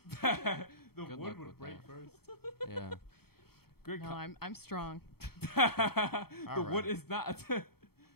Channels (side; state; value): right; late; 0.95 ms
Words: The Good wood luck would with break that. first. Yeah. Good. No, I'm strong. The All wood right. is not.